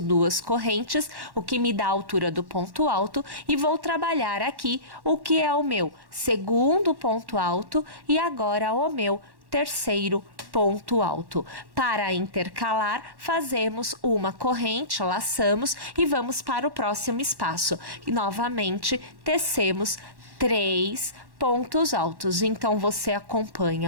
correntes, o que me dá a altura do ponto alto, e vou trabalhar aqui o que é o meu segundo ponto alto e agora o meu terceiro ponto alto. Para intercalar, fazemos uma corrente, laçamos e vamos para o próximo espaço. E novamente tecemos 3 pontos altos. Então, você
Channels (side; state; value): left; late; 1.1 ms